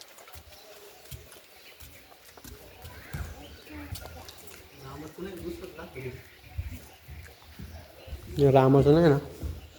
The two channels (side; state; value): both; identical; correlation 1.00